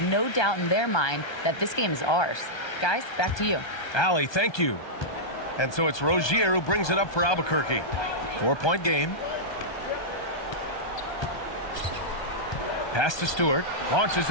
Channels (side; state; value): right; late; 1.2 ms